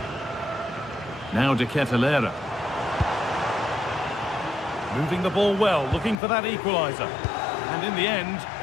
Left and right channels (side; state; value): right; drops out; at 6.2 s